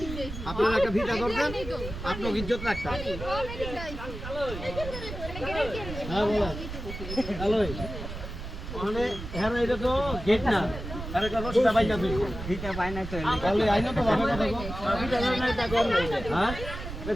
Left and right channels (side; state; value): right; noise; rumble, 9 dB below the sound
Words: আপনারা একটা ফিতা ধরবেন আপনার ইজ্জত রাখতে হ্যাঁ বলা হ্যালো মানে হ্যাঁ এটা তো গেট না আরে একটা রশিটা বাইনা তুই ফিতা বাইনা তো তাহলে আইনো তো ভাবে কথা কো ফিতা ধরে না তা কর হ্যাঁ